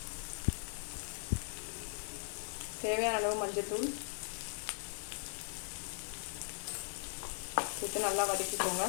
தேவையான அளவு மஞ்சள்தூள் சேர்த்து நல்லா வதக்கிக்கோங்க.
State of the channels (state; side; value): silent; right; digital silence